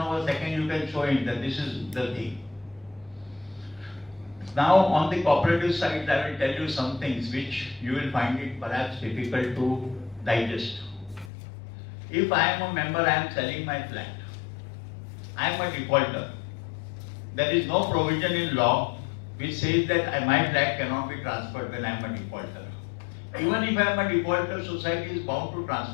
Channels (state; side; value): drops out; right; at 11.3 s